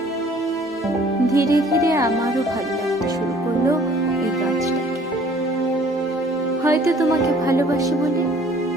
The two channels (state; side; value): normal; both; correlation 0.55